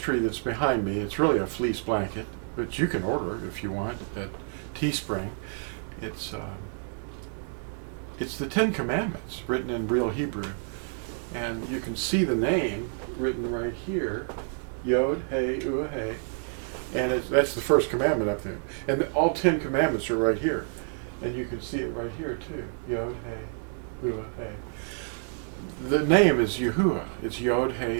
that's behind me, it's really a fleece blanket, but you can order it if you want at Teespring. It's the Ten Commandments written in real Hebrew. And you can see the name written right here, Yod, Hey, Uah, Hey. And that's the first commandment up there. And all 10 commandments are right here. And you can see it right here too, Yod, Hey, Uah, Hey. The name is Yahuah. It's Yod,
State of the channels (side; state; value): left; silent; 59 dB below the other